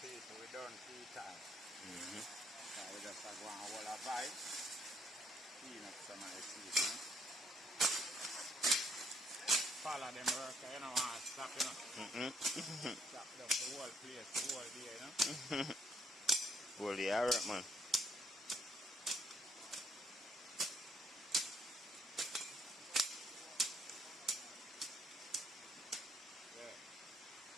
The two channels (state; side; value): normal; both; correlation 0.69